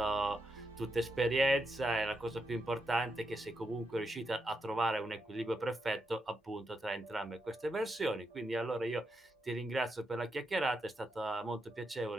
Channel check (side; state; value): both; normal; correlation 0.83